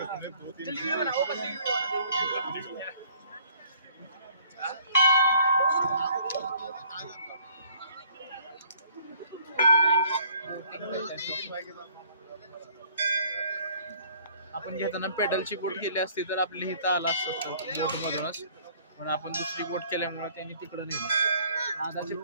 आपण घेताना पेडलची बोट केली असती तर आपली इथं आला असतो बोट मधूनच, पण आपण दुसरी बोट केल्यामुळे त्यांनी तिकडे नेलं. आधा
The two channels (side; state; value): both; inverted; correlation -0.58